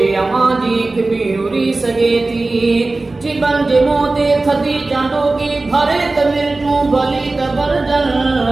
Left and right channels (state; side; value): quieter; left; 3.2 dB